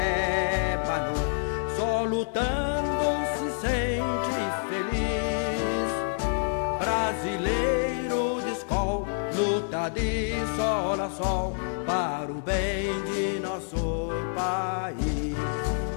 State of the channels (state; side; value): silent; right; digital silence